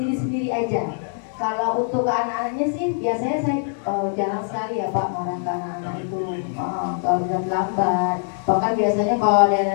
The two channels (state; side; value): silent; right; digital silence